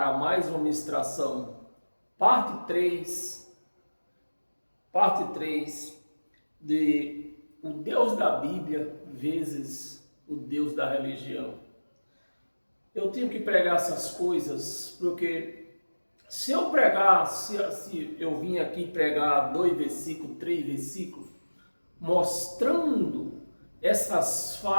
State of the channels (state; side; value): inverted; both; correlation -1.00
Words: mais uma ministração. Parte 3 de o Deus da Bíblia vezes o Deus da religião. Eu tenho que pregar essas coisas porque se eu pregar, se eu vim aqui pregar 2 versículos, 3 versículos, mostrando essas